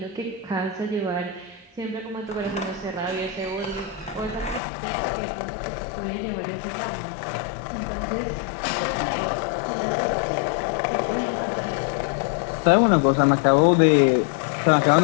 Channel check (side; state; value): right; drops out; at 4.6 s